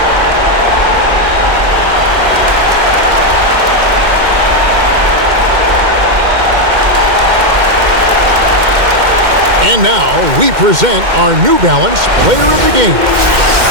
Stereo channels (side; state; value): left; late; 2.1 ms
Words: And now we present our New Balance Player of the Game.